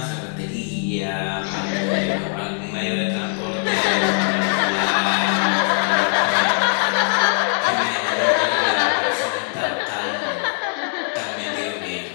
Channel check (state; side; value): silent; right; 58 dB below the other